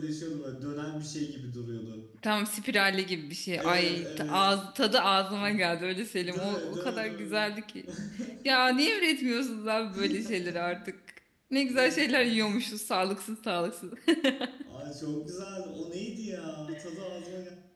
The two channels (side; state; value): both; identical; correlation 1.00